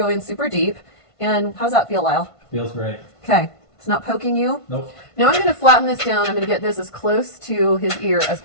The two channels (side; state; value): right; late; 1.5 ms